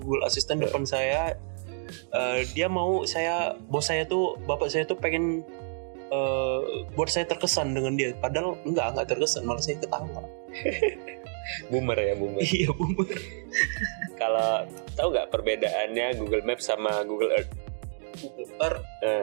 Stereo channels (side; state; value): left; silent; digital silence